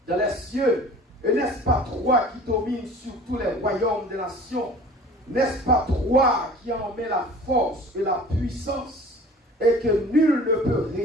dans les cieux? Et n'est-ce pas toi qui domines sur tous les royaumes des nations? N'est-ce pas toi qui en mets la force et la puissance et que nul ne peut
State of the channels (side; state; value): both; normal; correlation 0.45